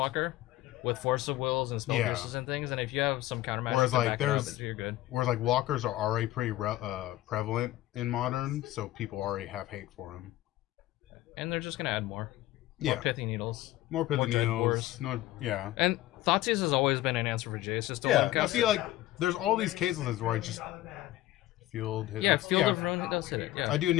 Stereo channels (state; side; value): quieter; right; 15.8 dB